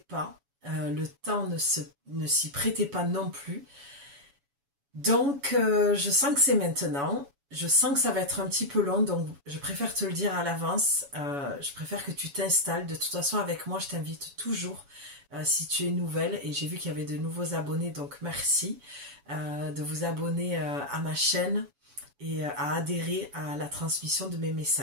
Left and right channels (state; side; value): late; left; 7.1 ms